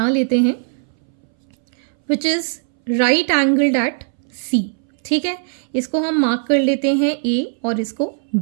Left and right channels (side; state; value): left; silent; 63 dB below the other